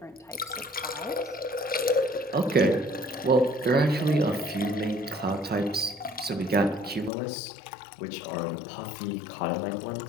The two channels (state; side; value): drops out; right; at 7.1 s